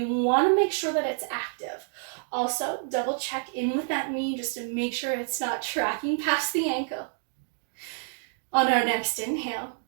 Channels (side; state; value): left; silent; 59 dB below the other